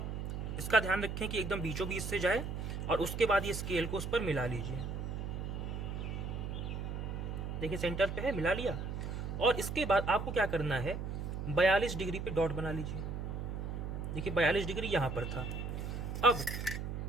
इसका ध्यान रखें कि एकदम बीचों बीच से जाए, और उसके बाद ये स्केल को उस पर मिला लीजिए। देखिए सेंटर पे है, मिला लिया। और इसके बाद आपको क्या करना है, 42 डिग्री पे डॉट बना लीजिए। देखिए 42 डिग्री यहाँ पर था। अब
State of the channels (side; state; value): right; noise; hum, 4 dB below the sound